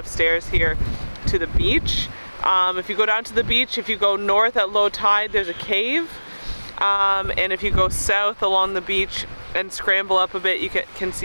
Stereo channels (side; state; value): both; inverted; correlation -1.00